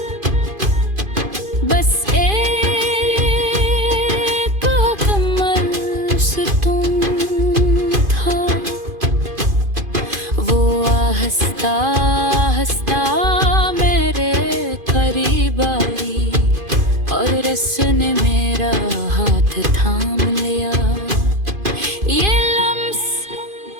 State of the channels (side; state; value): left; late; 2.5 ms